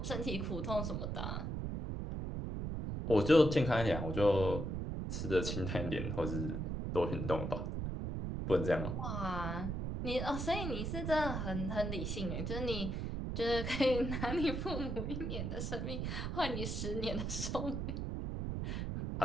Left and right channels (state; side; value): noise; right; rumble, 2 dB below the sound